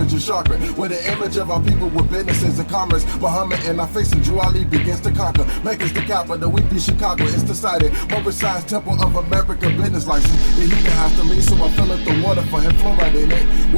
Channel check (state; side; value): inverted; both; correlation -1.00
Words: of chakra. With the image of our people with businesses and commerce. Muhammad and our face and Drew Ali begins to conquer. Make us the capital, we be Chicago, it's decided. Moorish Science Temple of America business license. The heater has to leave, so I fill up the water for him, fluoride in it.